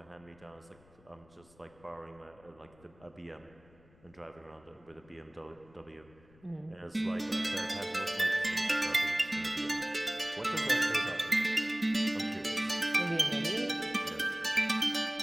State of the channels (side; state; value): left; noise; rumble, 28 dB below the sound